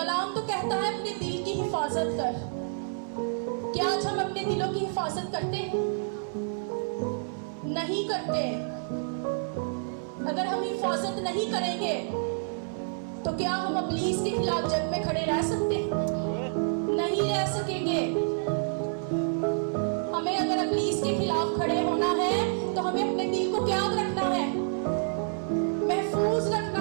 तो कहता है अपने दिल की हिफाजत कर। क्या आज हम अपने दिलों की हिफाजत करते हैं? नहीं करते। अगर हम हिफाजत नहीं करेंगे तो क्या हम इब्लीस के खिलाफ जंग में खड़े रह सकते हैं? नहीं रह सकेंगे। हमें अगर इब्लीस के खिलाफ खड़े होना है तो हमें अपने दिल को क्या रखना है? महफूज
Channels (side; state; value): left; silent; 59 dB below the other